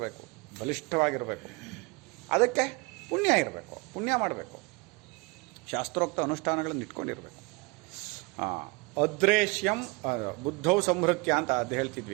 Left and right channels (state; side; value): quieter; left; 26.2 dB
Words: ಬಲಿಷ್ಠವಾಗಿರಬೇಕು. ಅದಕ್ಕೆ ಪುಣ್ಯ ಇರಬೇಕು, ಪುಣ್ಯ ಮಾಡಬೇಕು, ಶಾಸ್ತ್ರೋಕ್ತ ಅನುಷ್ಠಾನಗಳನ್ನು ಇಟ್ಕೊಂಡಿರಬೇಕು. ಅದ್ರೇಶ್ಯಂ ಬುದ್ಧೌ ಸಂಹೃತ್ಯ ಅಂತ ಅದು